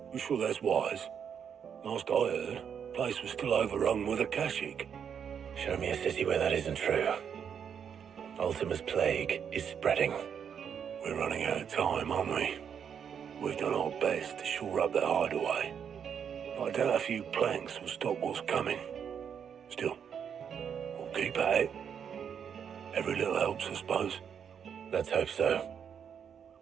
You sure that's wise? Last I heard, the place was still overrun with Akashic. Show me a city where that isn't true. Ultima's plague is spreading. We're running out of time, aren't we? We've done our best to shore up that hideaway. I doubt a few planks will stop what's coming. Still, we'll keep at it. Every little helps, I suppose. Let's hope so.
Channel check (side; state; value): left; quieter; 7.7 dB